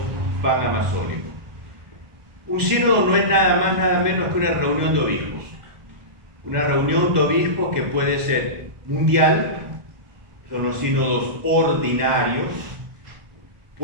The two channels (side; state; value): left; late; 2.0 ms